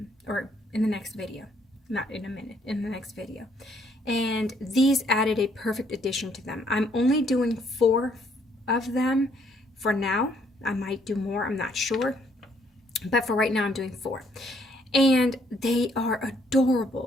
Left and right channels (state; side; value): normal; both; correlation 0.67